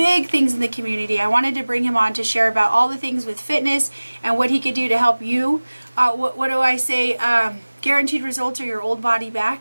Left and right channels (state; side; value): inverted; both; correlation -1.00